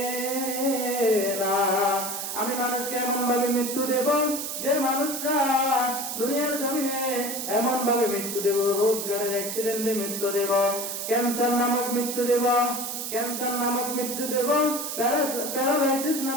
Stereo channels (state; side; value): noise; right; hiss, 5 dB below the sound